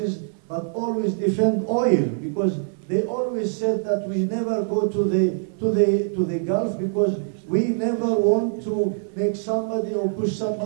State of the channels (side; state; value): left; silent; digital silence